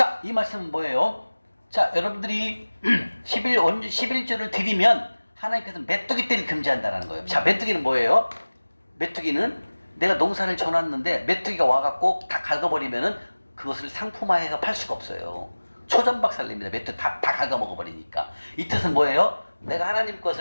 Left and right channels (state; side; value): inverted; both; correlation -1.00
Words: 이 말씀은 뭐예요? 자, 여러분들이 11조를 드리면 하나님께서 메뚜기 떼를 금지한다는 거예요. 자, 메뚜기는 뭐예요? 메뚜기는 내가 농사를 져놨는데 메뚜기가 와갖고 다 갉아버리면은 그것을 상품화해서 팔 수가 없어요. 초전박살냅니다. 메뚜기 다 갉아먹어버리니까. 이 뜻은 뭐예요? 내가 하나님